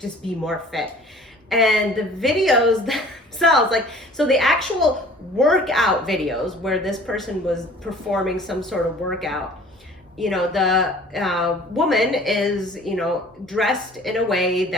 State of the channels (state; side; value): normal; both; correlation 0.49